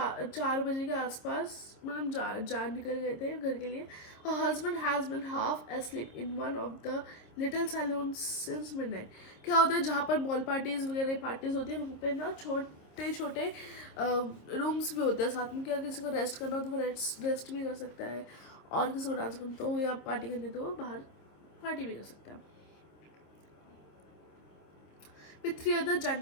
बजे के आसपास, मतलब जा निकल गए थे घर के लिए. Her husband has been half asleep in one of the little saloons since midnight. क्या होता है जहाँ पर बॉल पार्टीज वगैरह पार्टीज होती है वहाँ पे ना छोटे छोटे रूम्स भी होते हैं साथ में. क्या किसी को रेस्ट करना हो तो वो रेस्ट भी कर सकता है, और किसी को डांस करना तो या पार्टी करनी तो बाहर पार्टी भी कर सकता है. With 3 other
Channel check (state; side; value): late; right; 26 ms